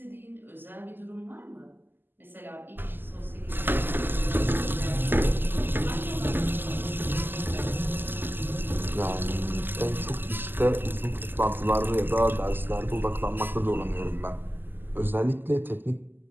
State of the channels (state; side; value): late; left; 0.093 ms